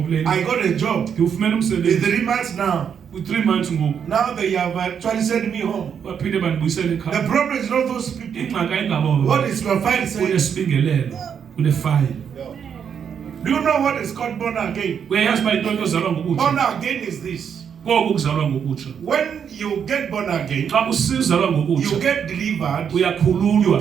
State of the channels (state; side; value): quieter; left; 7.6 dB